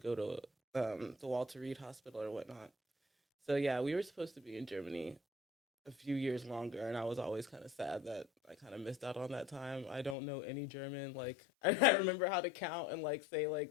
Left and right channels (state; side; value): drops out; right; at 10.2 s